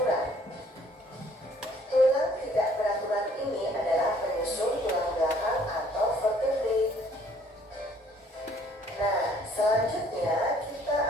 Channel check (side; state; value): both; normal; correlation 0.60